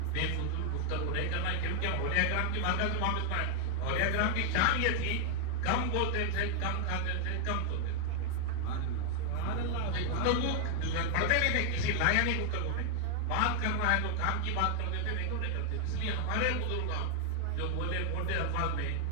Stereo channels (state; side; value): different; both; correlation 0.00